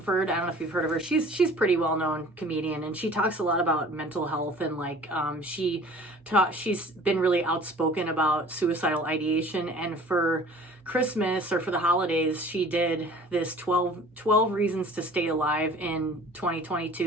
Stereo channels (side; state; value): both; normal; correlation 0.47